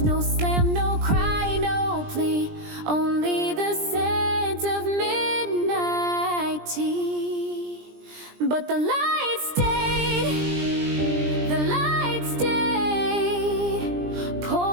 no slam, no cry, no plea, only the scent of midnight tea. But the light stayed, the light stayed,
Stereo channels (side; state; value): left; late; 20 ms